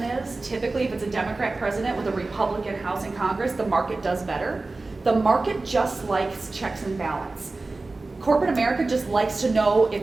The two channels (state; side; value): quieter; left; 3.4 dB